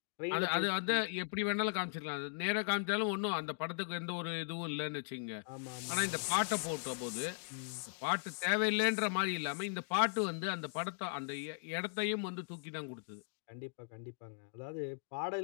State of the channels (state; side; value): silent; right; digital silence